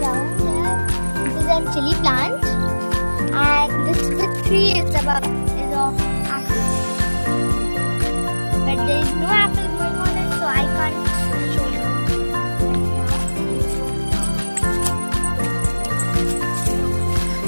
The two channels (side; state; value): both; inverted; correlation -1.00